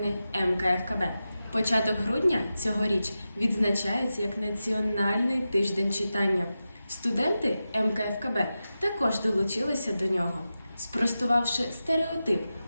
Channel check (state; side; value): inverted; both; correlation -0.92